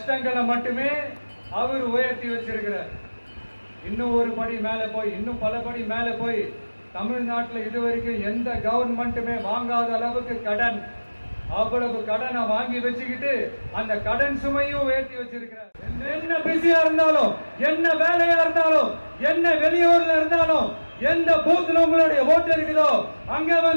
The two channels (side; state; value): both; inverted; correlation -1.00